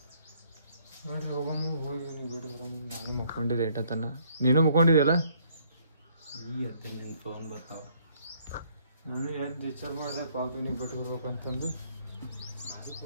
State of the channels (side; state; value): both; inverted; correlation -0.65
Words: ಹೋಗಮ್ಮ ಹೋಗಿ ಬಿಡು ಬರಮ್ಮ ನಾನು ಮುಕ್ಕೊಂಡಿದ್ದೆ ಏಟತನ ನೀನು ಮುಕ್ಕೊಂಡಿದ್ಯಲ್ಲ ಈ ಅತ್ತೆ ನಿನ್ನ ಫೋನ್ ಬರ್ತಾವ ನಾನು ಎದ್ದು ವಿಚಾರ ಮಾಡಿದೆ ಪಾಪಿನಿಗೆ ಬಿಟ್ಟು ಬರ್ಬೇಕಂತಂದು